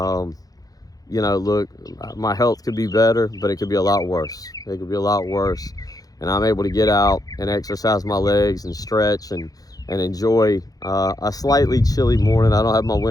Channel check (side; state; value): right; late; 0.18 ms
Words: know, look, my health could be better, but it could be a lot worse. It could be a lot worse. And I'm able to get out and exercise my legs and stretch and enjoy a slightly chilly morning. I don't have my